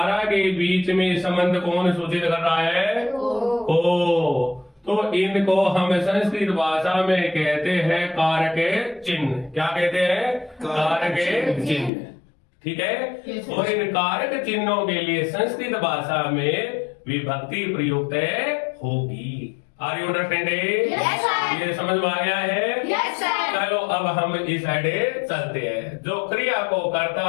के बीच में संबंध कौन सूचित कर रहा है, ओ। तो इनको हम संस्कृत भाषा में कहते हैं कारक चिन्ह। क्या कहते हैं, कारक चिन्ह, ठीक है। और इन कारक चिन्हों के लिए संस्कृत भाषा में विभक्ति प्रयुक्त होगी। Are you understanding? Yes, sir. ये समझ में आया है? Yes, sir. चलो अब हम इस साइड चलते हैं। जो क्रिया को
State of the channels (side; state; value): right; drops out; at 11.9 s